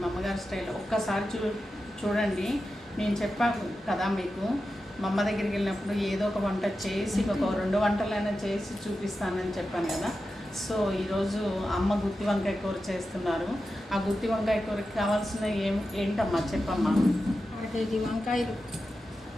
మా అమ్మగారి స్టైల్. ఒక్కసారి చూడండి. నేను చెప్పాను కదా మీకు, మా అమ్మ దగ్గరికి వెళ్ళినప్పుడు ఏదో ఒక వంట చేసి ఒక 2 వంటలైనా చేసి చూపిస్తానని చెప్పాను కదా. సో ఈరోజు అమ్మ గుత్తి వంకాయ కూర చేస్తున్నారు. ఆ గుత్తి వంకాయ కూరకి కావాల్సిన ఏంటమ్మా చెప్పమ్మా? 1 కేజీ వంకాయలు,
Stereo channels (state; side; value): normal; both; correlation 0.91